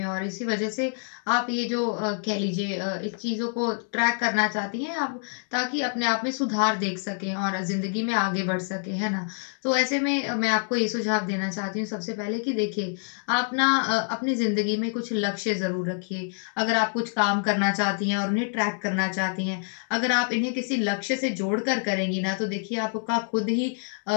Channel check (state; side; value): silent; right; 56 dB below the other